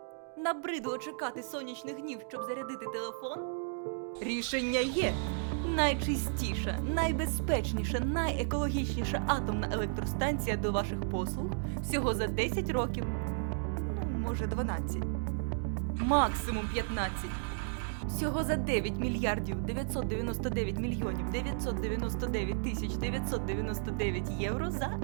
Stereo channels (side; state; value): left; silent; digital silence